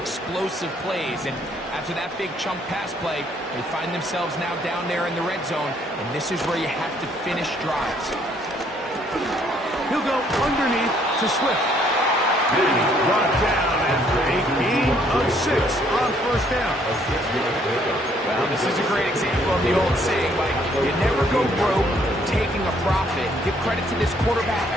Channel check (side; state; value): both; normal; correlation 0.66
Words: plays. And after that big chunk pass play, they find themselves now down there in the red zone. And this is where you have to finish drives. He'll go underneath to Swift. And he's brought down after a gain of 6 on first down. Well, this is a great example of the old saying, Mike, you never go broke taking a profit. Give credit to this quarterback.